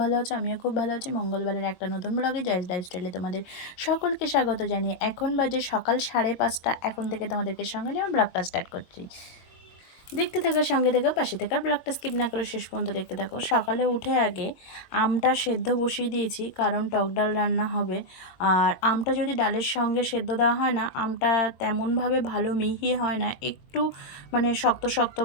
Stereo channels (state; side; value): late; right; 22 ms